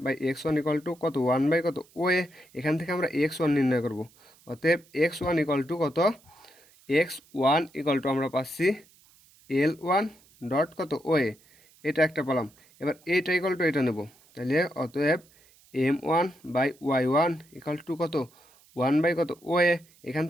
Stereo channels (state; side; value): noise; right; hiss, 29 dB below the sound